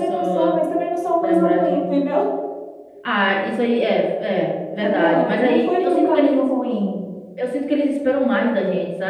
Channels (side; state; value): both; identical; correlation 1.00